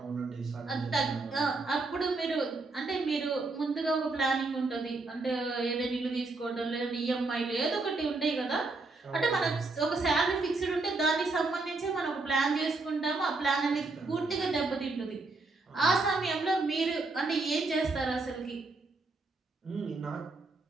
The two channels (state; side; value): quieter; left; 3.5 dB